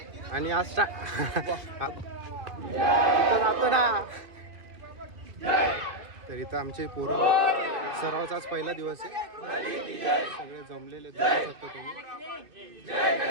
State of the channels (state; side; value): late; left; 2.5 ms